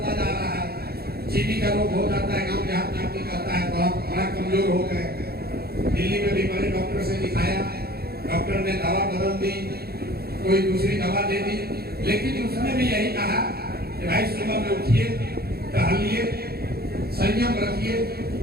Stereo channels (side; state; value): left; late; 0.46 ms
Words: जा रहा है, चीनी का रोग हो जाता है, गांव देहात में आपको कहता है बड़ा कमजोर हो गए। दिल्ली में भी बड़े डॉक्टर से दिखाया, डॉक्टर ने दवा बदल दी, कोई दूसरी दवा दे दी, लेकिन उसने भी यही कहा कि भाई सुबह में उठिए, टहलिए, संयम रखिए,